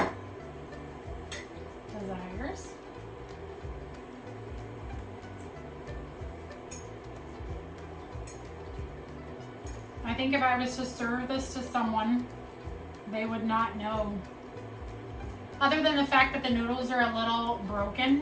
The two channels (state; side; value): identical; both; correlation 1.00